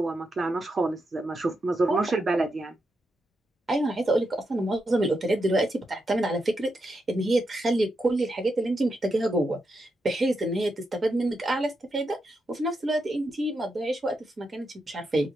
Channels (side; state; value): both; normal; correlation 0.85